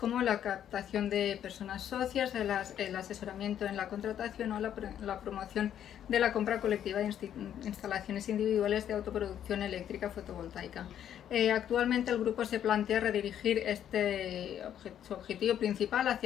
la captación de personas socias, el asesoramiento en la contratación o la promoción de la compra colectiva de instalaciones individuales de autoproducción eléctrica fotovoltaica. Actualmente el grupo se plantea redirigir su objetivo principal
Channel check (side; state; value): right; quieter; 10.1 dB